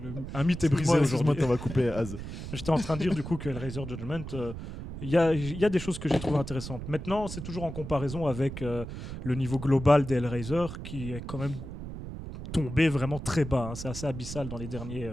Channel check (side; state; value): right; noise; rumble, 9 dB below the sound